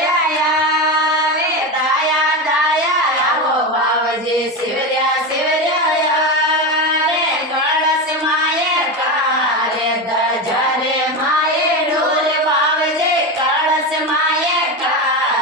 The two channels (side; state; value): both; normal; correlation 0.18